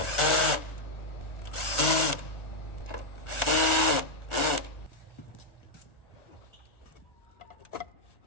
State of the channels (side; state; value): right; late; 1.3 ms